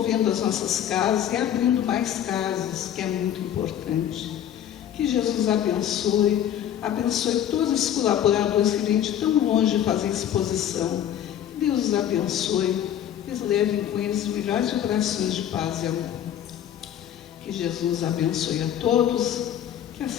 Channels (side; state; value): right; quieter; 10.4 dB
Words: as nossas casas e abrindo mais casas, que é muito importante. Que Jesus abençoe todos os colaboradores que vêm de tão longe fazer exposição. Que Deus os abençoe, que eles levem com eles melhores vibrações de paz e amor. Que Jesus abençoe a todos, que